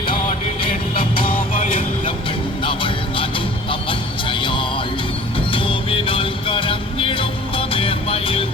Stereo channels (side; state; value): both; normal; correlation 0.47